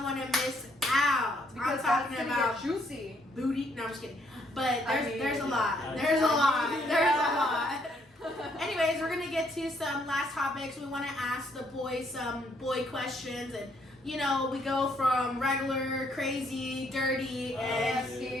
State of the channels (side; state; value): both; normal; correlation 0.70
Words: want to miss out. Because I'm talking that's gonna about get juicy. booty. No, I'm just kidding. But I there's a mean- lot. Yeah. There's a lot. Yeah. There's a lot. Anyways, we're gonna get to some last topics. We want to ask the boys some boy questions, and you know we go from regular, crazy, dirty, and